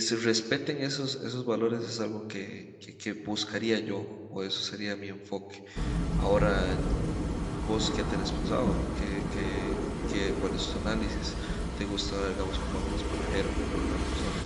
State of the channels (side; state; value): both; identical; correlation 1.00